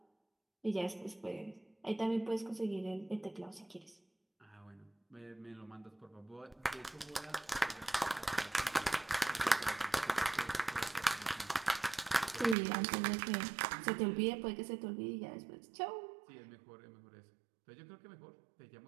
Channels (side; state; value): left; drops out; at 12.6 s